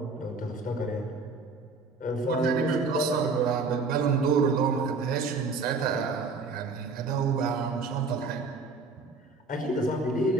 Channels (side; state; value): left; quieter; 4.0 dB